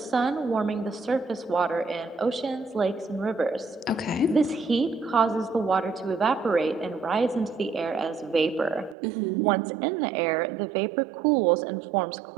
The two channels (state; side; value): drops out; left; at 9.0 s